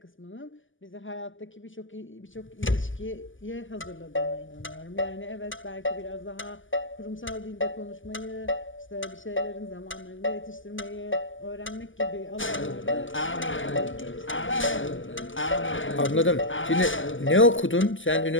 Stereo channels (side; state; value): right; late; 0.57 ms